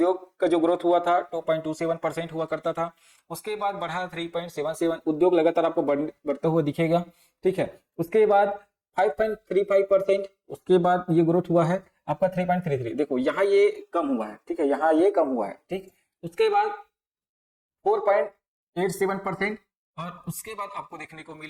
का जो ग्रोथ हुआ था 2.27% हुआ करता था। उसके बाद बढ़ा 3.77, उद्योग लगातार आपको बढ़ता हुआ दिखेगा। ठीक है, उसके बाद 5.35%, उसके बाद ये ग्रोथ हुआ है आपका 3.33। देखो यहाँ ये कम हुआ है। ठीक है, यहाँ ये कम हुआ है। ठीक, उसके बाद 4.87%, और उसके बाद आपको देखने को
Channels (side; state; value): both; identical; correlation 1.00